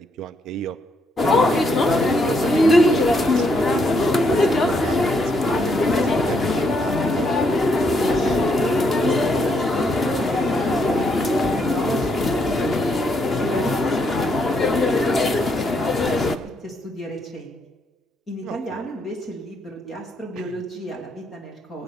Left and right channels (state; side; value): normal; both; correlation 0.75